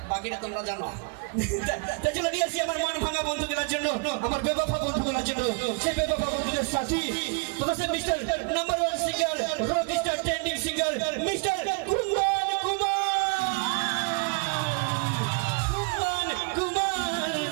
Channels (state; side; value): quieter; left; 33.8 dB